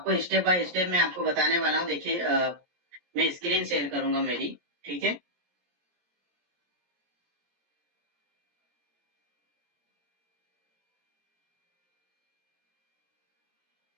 स्टेप बाय स्टेप मैं आपको बताने वाला हूँ। देखिए, मैं स्क्रीन शेयर करूंगा मेरी। ठीक है।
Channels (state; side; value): late; left; 17 ms